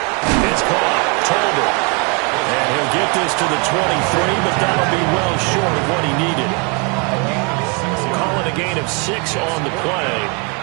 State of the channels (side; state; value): left; quieter; 33.1 dB